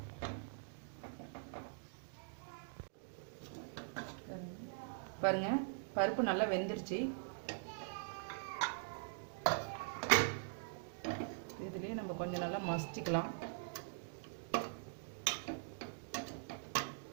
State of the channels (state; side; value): silent; left; digital silence